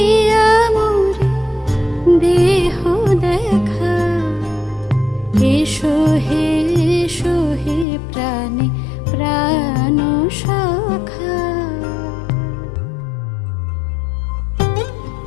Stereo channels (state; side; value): drops out; right; at 7.9 s